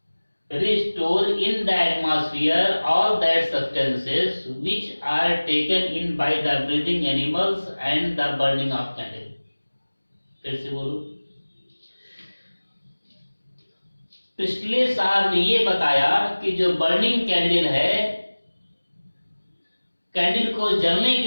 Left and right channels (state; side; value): inverted; both; correlation -1.00